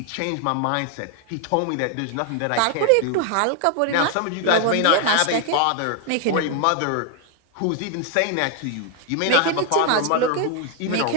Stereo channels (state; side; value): different; both; correlation 0.01